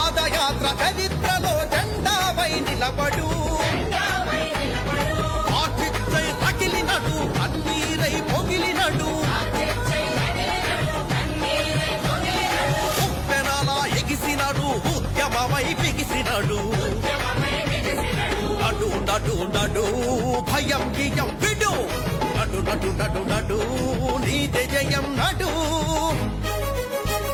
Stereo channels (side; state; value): both; identical; correlation 1.00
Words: చరిత్రలో జెండాపై నిలబడు ఆచిత్తై తగిలినడు కన్నీరై పొగిలినడు ఉప్పెనలా ఎగిసినడు ఉద్యమమై బిగిసినడు నడు నడు నడు భయం గియం విడు నడు నడు నడు నడు నీదే జయం నడు